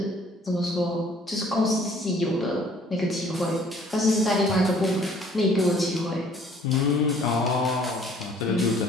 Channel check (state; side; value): normal; both; correlation 0.57